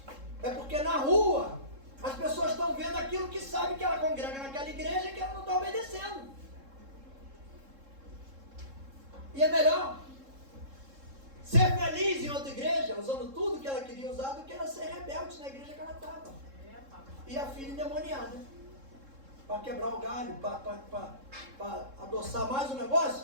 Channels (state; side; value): late; left; 3.7 ms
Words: É porque na rua as pessoas estão vendo aquilo que sabem que ela congrega naquela igreja e que ela não está obedecendo. E é melhor ser feliz em outra igreja, usando tudo que ela queria usar, do que ela ser rebelde na igreja que ela estava. E a filha endemoniada. Para quebrar o galho, para adoçar mais o